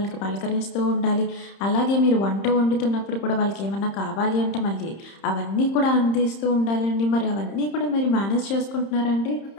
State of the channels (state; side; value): late; right; 30 ms